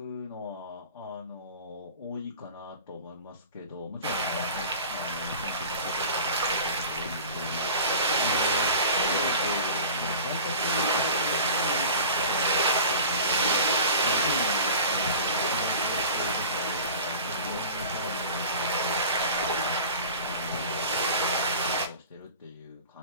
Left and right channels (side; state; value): both; inverted; correlation -0.39